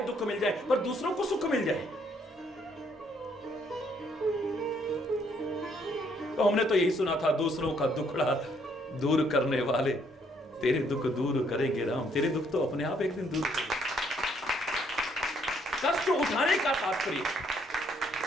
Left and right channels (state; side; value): normal; both; correlation 0.68